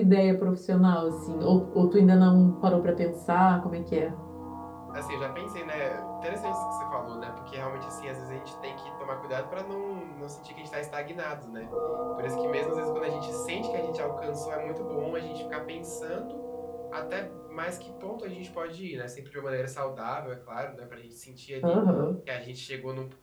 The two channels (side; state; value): both; identical; correlation 1.00